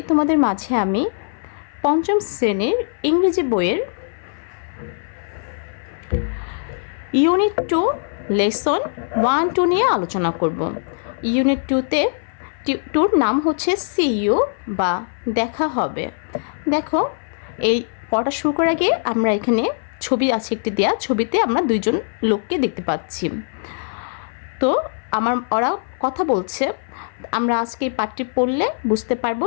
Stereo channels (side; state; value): right; silent; 58 dB below the other